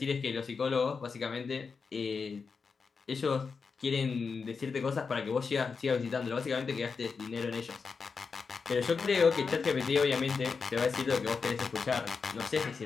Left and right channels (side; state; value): right; quieter; 5.2 dB